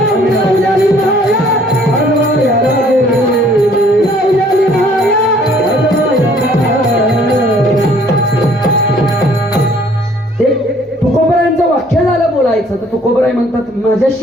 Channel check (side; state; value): both; normal; correlation 0.59